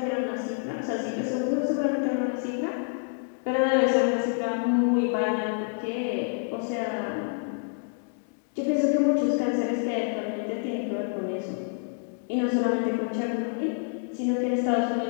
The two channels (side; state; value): right; silent; 60 dB below the other